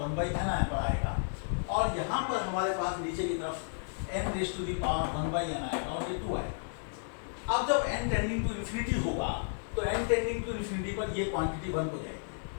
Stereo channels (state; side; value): silent; right; 56 dB below the other